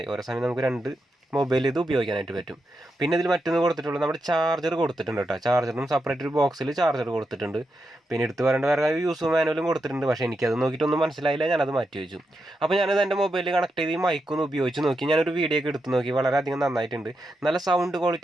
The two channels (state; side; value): normal; both; correlation 0.86